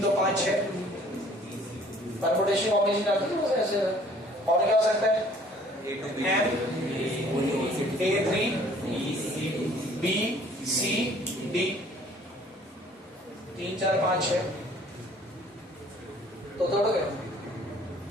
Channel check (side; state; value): both; normal; correlation 0.55